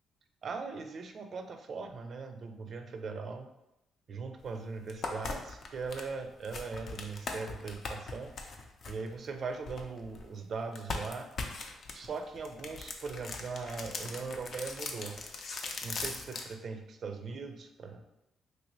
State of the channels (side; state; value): both; normal; correlation 0.76